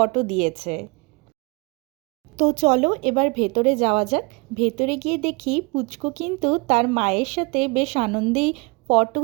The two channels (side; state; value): left; quieter; 28.3 dB